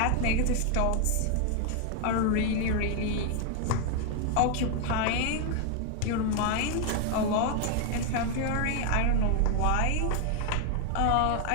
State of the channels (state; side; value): different; both; correlation 0.00